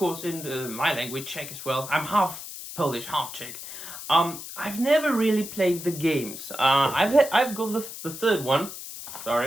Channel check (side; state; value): left; noise; hiss, 11 dB below the sound